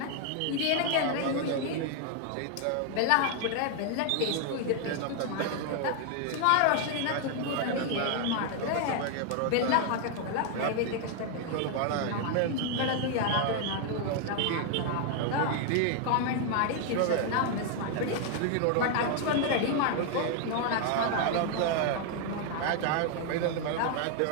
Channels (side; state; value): both; different; correlation 0.00